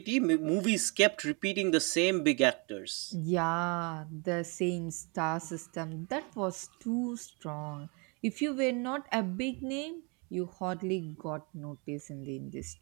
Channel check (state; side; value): quieter; left; 32.2 dB